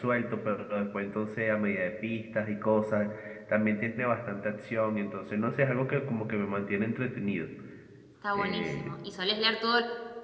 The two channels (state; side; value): identical; both; correlation 1.00